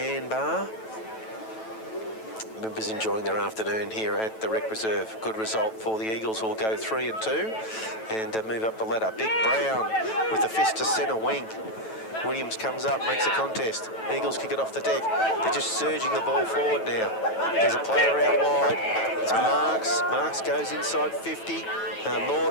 bar. Members enjoying their afternoon here at the Rec Reserve. Good result for the Eagles, who will go 3-2 and move up the ladder. Big Brown with the fist to centre wing. Williams comes up, makes a contest. Eagles kick it off the deck. They're just surging the ball forward now. There's a player out wide. It's Marks. Marks goes inside 50.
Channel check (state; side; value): late; right; 9.1 ms